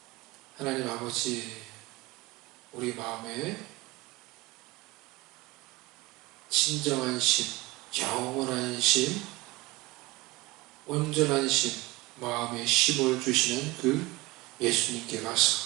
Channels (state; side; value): quieter; left; 21.6 dB